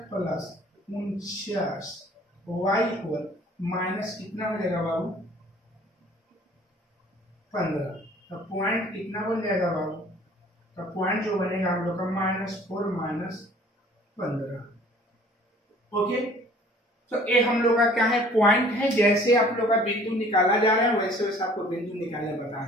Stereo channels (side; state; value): both; normal; correlation 0.52